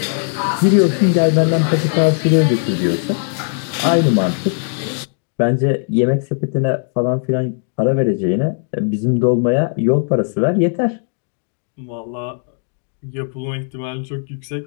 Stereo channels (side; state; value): right; silent; 57 dB below the other